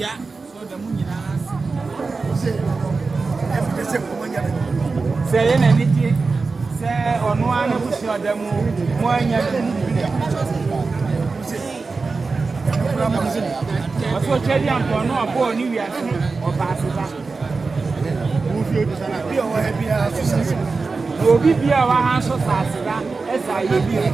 so the moon. Say, anything, say, on one of the moon, one. So tell you for no upon New Year or pass it back. You be our hands of Sasida, as I be.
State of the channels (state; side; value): quieter; left; 4.2 dB